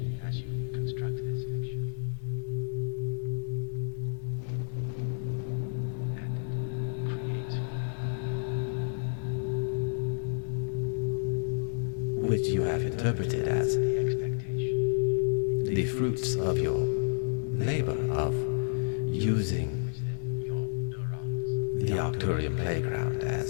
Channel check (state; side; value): silent; right; digital silence